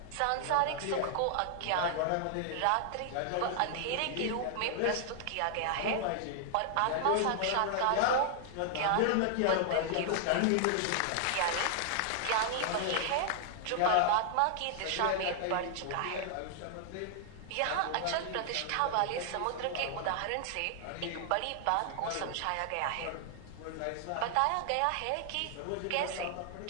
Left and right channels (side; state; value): both; different; correlation 0.00